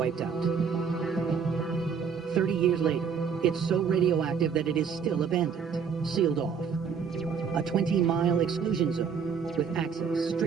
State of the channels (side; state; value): left; quieter; 6.4 dB